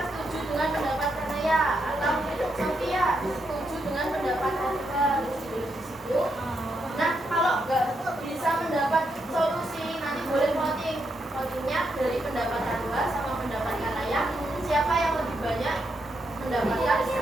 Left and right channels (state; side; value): normal; both; correlation 0.81